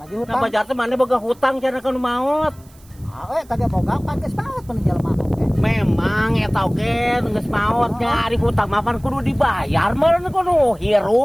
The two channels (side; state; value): right; noise; hiss, 28 dB below the sound